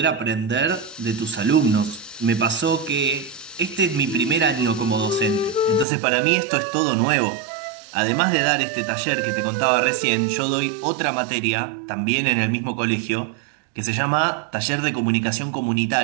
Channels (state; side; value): drops out; left; at 5.9 s